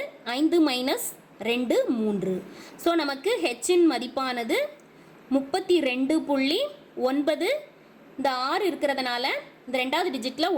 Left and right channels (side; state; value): both; identical; correlation 1.00